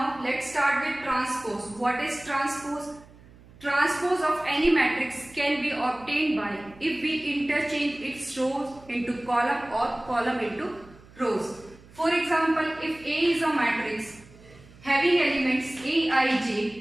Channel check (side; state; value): right; noise; hum, 23 dB below the sound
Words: let's start with transpose. What is transpose? Transpose of any matrix can be obtained by if we interchange its rows into column or column into rows. For example, if A is a matrix having elements A, I,